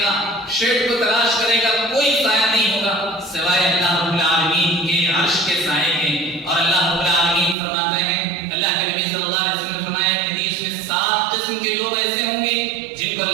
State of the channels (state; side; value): drops out; left; at 7.6 s